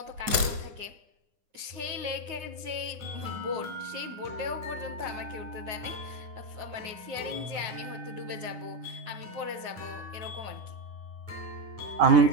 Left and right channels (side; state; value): left; late; 9.7 ms